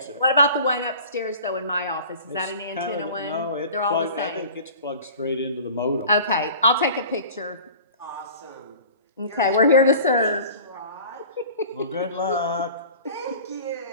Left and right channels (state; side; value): inverted; both; correlation -0.42